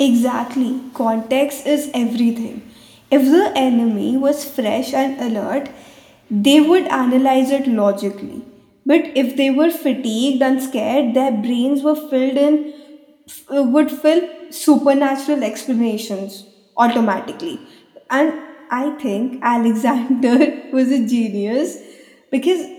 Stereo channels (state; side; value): identical; both; correlation 1.00